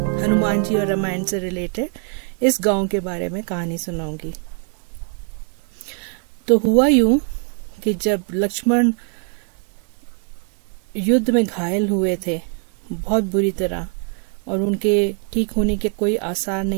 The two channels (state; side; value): quieter; left; 39.8 dB